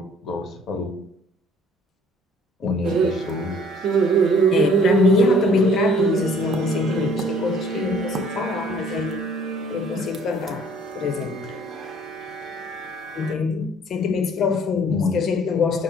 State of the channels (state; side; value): normal; both; correlation 0.56